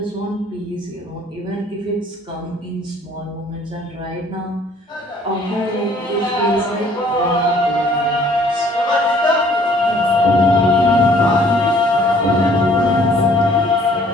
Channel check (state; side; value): normal; both; correlation 0.58